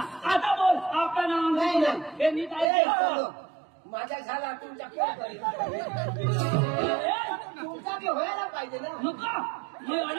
आता बोल आपलं नाव नाही, नाही. हे नीट ए, आहे चलो. माझा झाला तुमच्या कोण करेल तुमचा बी व्हायला पाहिजे ना नको मी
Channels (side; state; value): left; drops out; at 2.7 s